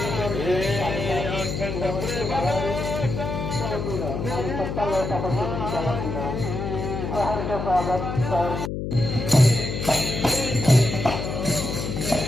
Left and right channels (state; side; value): noise; left; hum, 4 dB below the sound